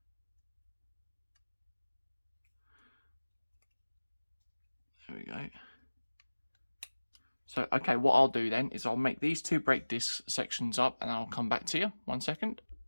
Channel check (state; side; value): inverted; both; correlation -1.00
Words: There we go. So, okay, what I'll do then is I'll make these 2 brake disc sections up and I'll come back to you. 1 second.